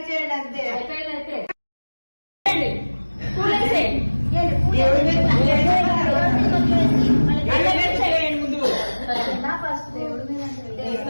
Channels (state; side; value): inverted; both; correlation -1.00